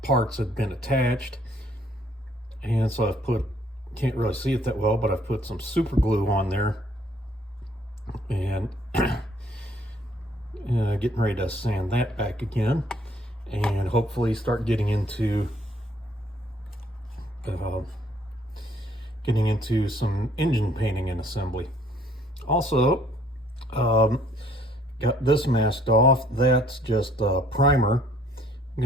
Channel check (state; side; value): normal; both; correlation 0.62